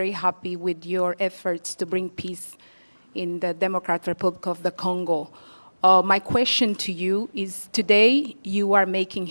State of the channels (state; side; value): inverted; both; correlation -1.00